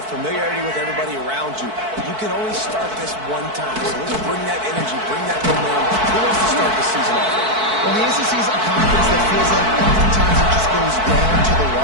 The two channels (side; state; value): left; late; 4.6 ms